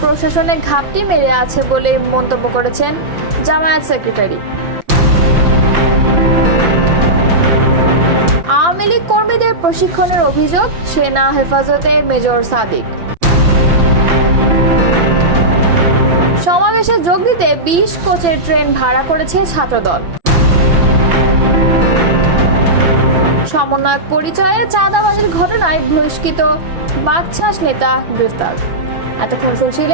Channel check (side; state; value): left; late; 5.9 ms